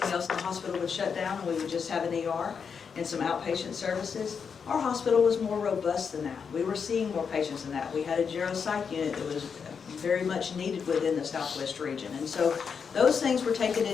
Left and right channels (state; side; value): quieter; right; 6.3 dB